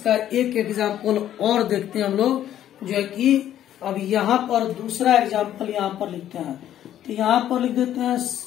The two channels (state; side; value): quieter; right; 11.4 dB